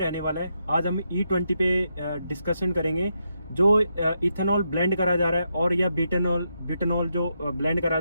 वाला है। आज हम E20 पे डिस्कशन करेंगे। जो इथेनॉल ब्लेंड करा जा रहा है और या बिटनॉल जो ब्लेंड करा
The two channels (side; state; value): both; inverted; correlation -0.82